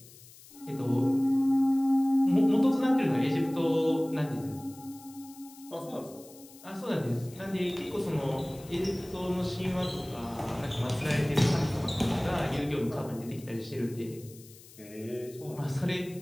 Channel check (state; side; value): noise; left; hiss, 21 dB below the sound